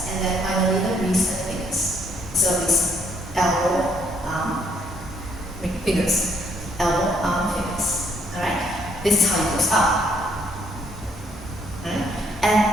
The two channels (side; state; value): both; normal; correlation 0.68